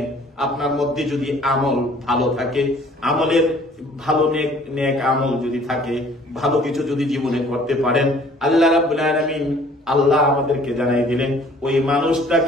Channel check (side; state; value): both; normal; correlation 0.55